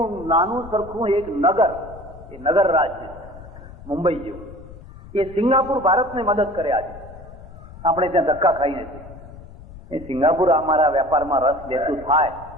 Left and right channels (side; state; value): left; noise; rumble, 17 dB below the sound